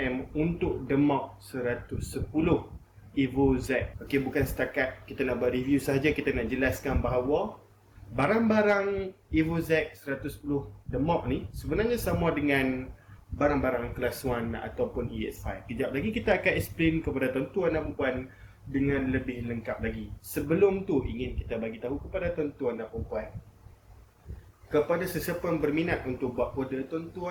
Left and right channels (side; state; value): both; identical; correlation 1.00